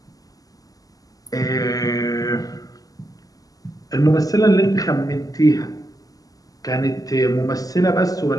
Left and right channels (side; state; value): right; late; 0.17 ms